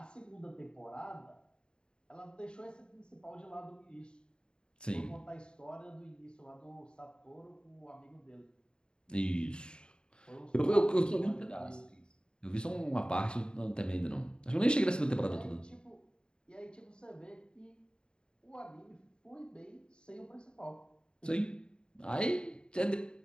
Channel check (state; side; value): late; right; 0.050 ms